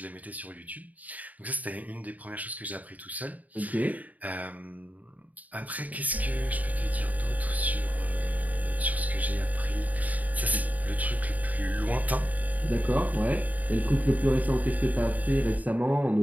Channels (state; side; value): late; left; 0.075 ms